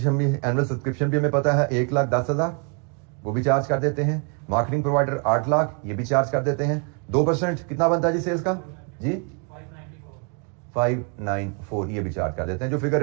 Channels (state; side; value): quieter; left; 38.0 dB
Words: भी हमें पता है 1,10,000, वो भी चार्ज कर देते हैं। मार्केटिंग प्रोवाइडर 8 लाख, ये भी चार्ज कर देते हैं। 2% कितना बनता है जी सेल्स का? जी 594, ये भी चार्ज कर देते हैं। जो फिगर